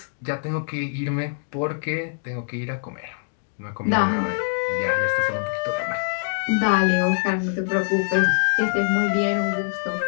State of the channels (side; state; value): right; silent; digital silence